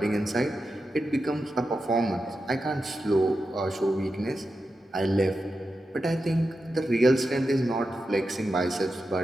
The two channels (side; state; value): both; normal; correlation 0.90